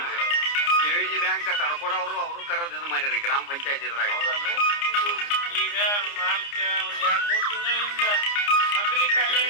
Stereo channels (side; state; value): right; late; 29 ms